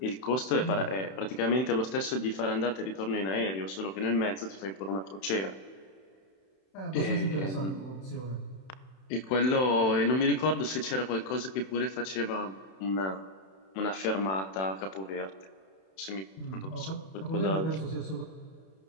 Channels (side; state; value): right; late; 31 ms